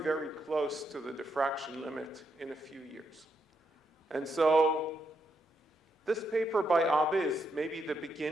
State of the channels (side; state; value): both; normal; correlation 0.80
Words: very close to the diffraction limit in a few years. And so this paper by Abbe is maybe the